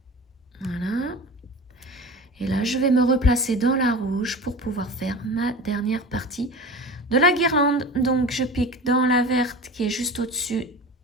Voilà. Et là, je vais me replacer dans la rouge pour pouvoir faire ma dernière partie de la guirlande. Donc, je pique dans la verte qui est juste au-dessus,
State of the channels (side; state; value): both; normal; correlation 0.34